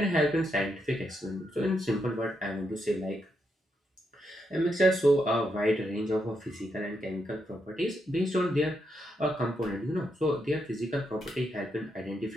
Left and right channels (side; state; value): both; normal; correlation 0.81